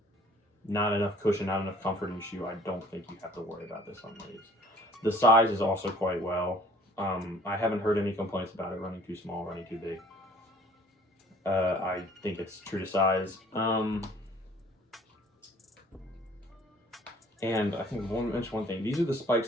not enough cushion, not enough comfort in your shoe, I don't think you have to worry about this on these. The size is also quite well. I haven't heard any complaints about it running too small, running too big. I think it's true to size. And I think I want to mention one thing. These are the spikes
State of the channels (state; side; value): normal; both; correlation 0.54